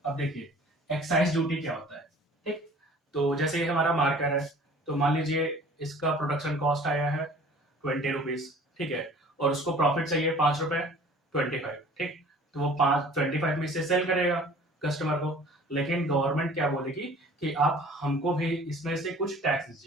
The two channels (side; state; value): both; normal; correlation 0.48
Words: अब देखिए एक्साइज ड्यूटी क्या होता है, ठीक। तो जैसे ये हमारा मार्कर है, तो मान लीजिए इसका प्रोडक्शन कॉस्ट आया है 20 रुपीज, ठीक है, और उसको प्रॉफिट चाहिए 5 रुपए, 25, ठीक। तो वो 25 में से सेल करेगा कस्टमर को। लेकिन गवर्नमेंट क्या बोलेगी कि आप हमको भी इसमें से कुछ टैक्स